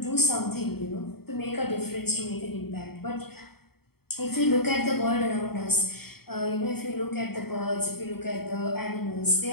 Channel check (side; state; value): right; late; 0.95 ms